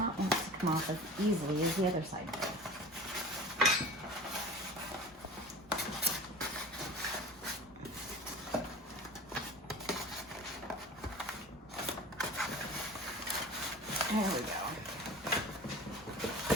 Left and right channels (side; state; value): both; normal; correlation 0.39